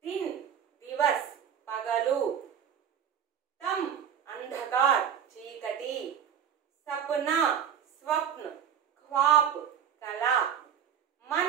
దిన్ దివస్, పగలు. తమ్ అంధకార్, చీకటి. సప్నా స్వప్న, ఖ్వాబ్, కల.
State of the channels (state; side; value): quieter; left; 8.5 dB